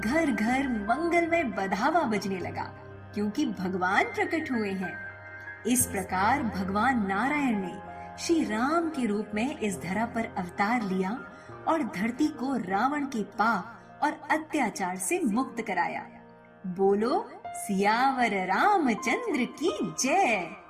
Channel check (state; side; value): identical; both; correlation 1.00